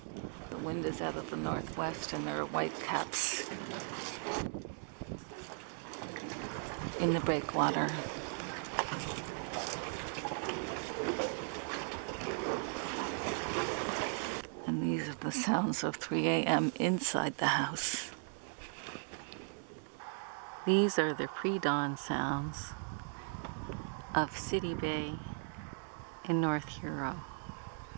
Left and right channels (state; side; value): silent; left; 53 dB below the other